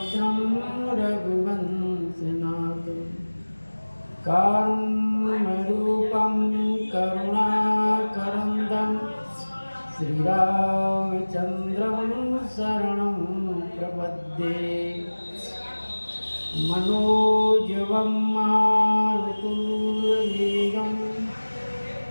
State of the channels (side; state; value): both; inverted; correlation -1.00